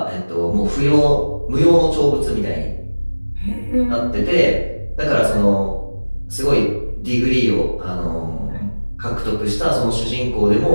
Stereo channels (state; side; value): inverted; both; correlation -1.00